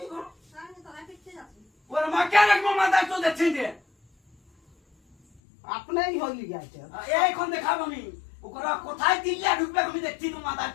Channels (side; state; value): right; drops out; at 5.4 s